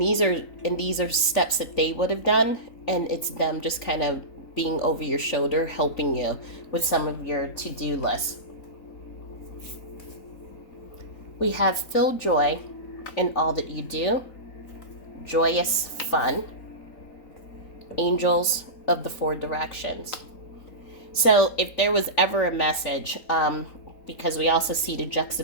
are steps that they would have done, and it's them just kind of being over your shoulder, helping you with some of your to-do list. We have feel joy in all that you do, joyous fun, angels of the four directions. So if there was ever a message, because we also see the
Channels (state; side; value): late; right; 3.9 ms